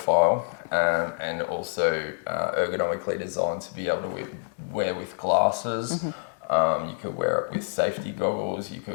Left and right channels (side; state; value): right; silent; digital silence